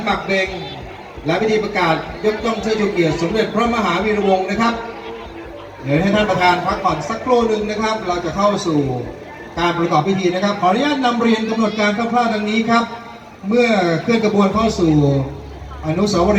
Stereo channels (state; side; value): identical; both; correlation 1.00